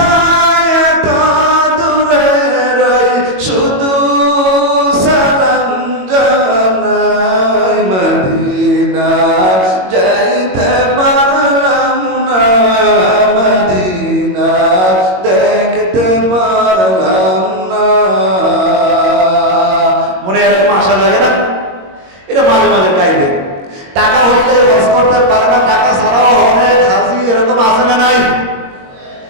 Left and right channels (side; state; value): left; late; 22 ms